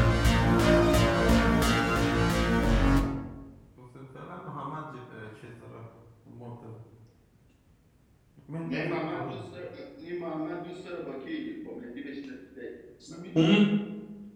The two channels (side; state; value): both; identical; correlation 1.00